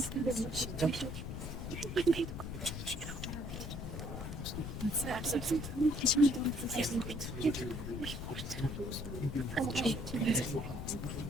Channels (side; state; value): left; noise; rumble, 6 dB below the sound